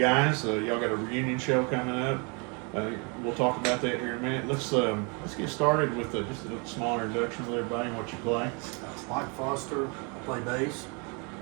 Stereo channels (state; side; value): quieter; left; 33.5 dB